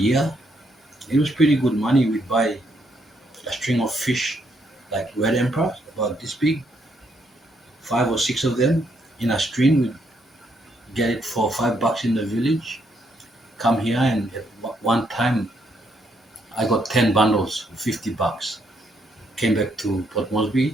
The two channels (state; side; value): normal; both; correlation 0.74